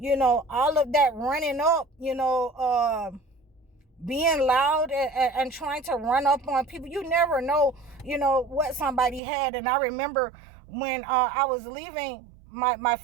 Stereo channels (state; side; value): drops out; left; at 9.2 s